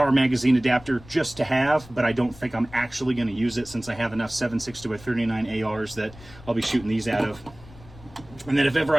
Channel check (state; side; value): noise; left; rumble, 20 dB below the sound